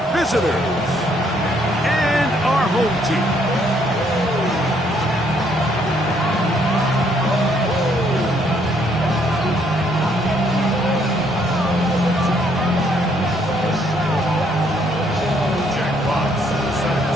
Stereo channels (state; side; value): normal; both; correlation 0.68